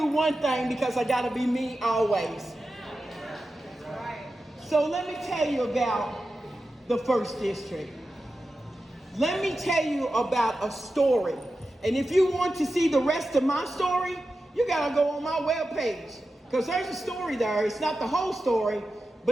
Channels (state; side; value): normal; both; correlation 0.92